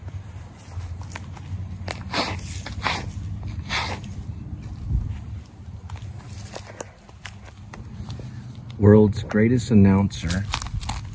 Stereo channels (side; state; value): both; identical; correlation 1.00